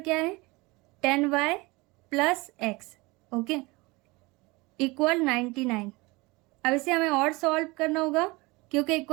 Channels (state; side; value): quieter; left; 24.0 dB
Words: है 10y plus x. Okay, equal 99। अब इसे हमें और सॉल्व करना होगा, क्योंकि